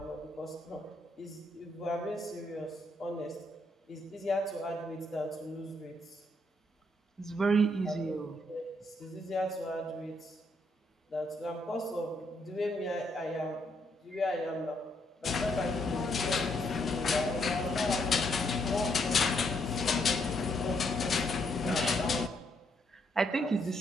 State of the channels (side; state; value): both; normal; correlation 0.74